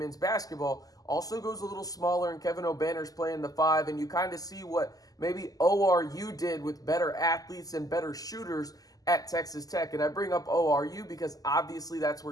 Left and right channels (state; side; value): late; right; 0.17 ms